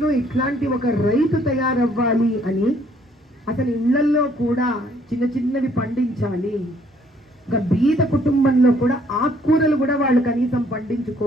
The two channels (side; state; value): both; normal; correlation 0.64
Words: ఇట్లాంటి ఒక రైతు తయారవ్వాలి అని, అతని ఇళ్లల్లో కూడా చిన్నవి పండించాలి. ఒక బీద కుటుంబంలో కూడా ఆకుకూరలు కూడా వాళ్ళు కనీసం